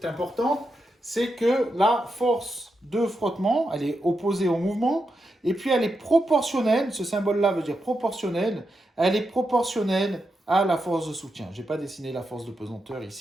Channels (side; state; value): both; normal; correlation 0.86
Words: importante, c'est que la force de frottement, elle est opposée au mouvement, et puis elle est proportionnelle, ce symbole-là veut dire proportionnel, elle est proportionnelle à la force de soutien. Je n'ai pas dessiné la force de pesanteur